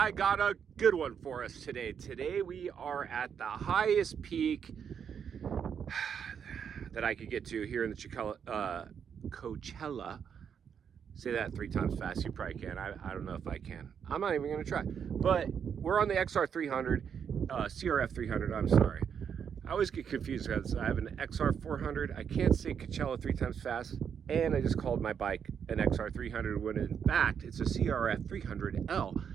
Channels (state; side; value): quieter; left; 7.5 dB